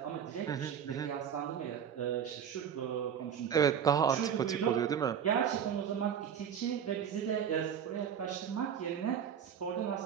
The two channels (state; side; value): quieter; left; 8.3 dB